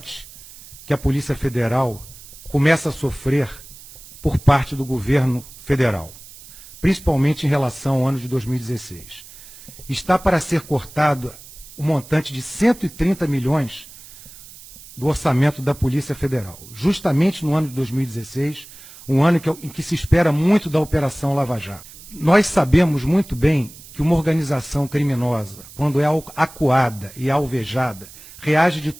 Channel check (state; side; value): noise; right; hiss, 19 dB below the sound